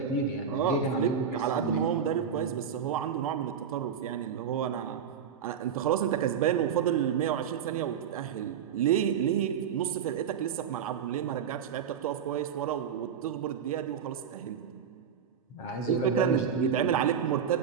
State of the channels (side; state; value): left; quieter; 7.7 dB